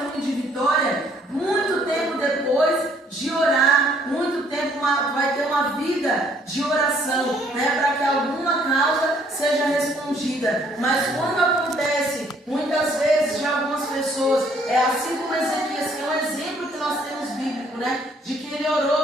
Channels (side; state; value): both; normal; correlation 0.63